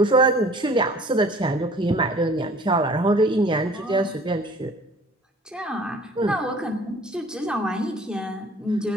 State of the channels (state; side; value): normal; both; correlation 0.50